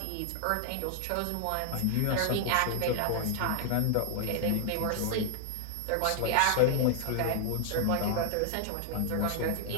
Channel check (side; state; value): both; different; correlation 0.00